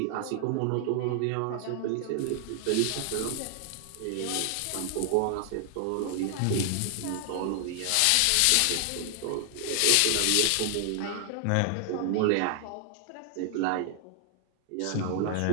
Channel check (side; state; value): both; different; correlation 0.00